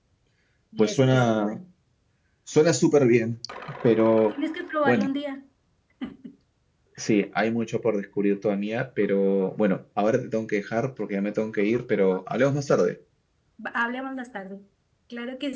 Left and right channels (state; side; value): identical; both; correlation 1.00